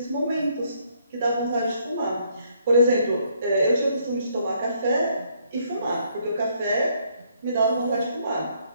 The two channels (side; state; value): both; inverted; correlation -0.69